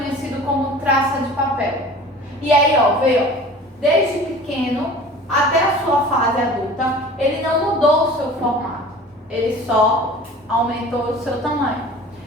como traça de papel. E aí, ó, veio, desde pequeno até a sua fase adulta, ele não mudou o seu formato, ele só aumentou o seu tamanho.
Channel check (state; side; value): normal; both; correlation 0.42